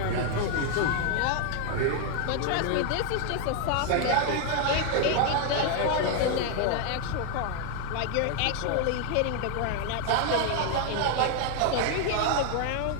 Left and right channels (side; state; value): both; different; correlation 0.00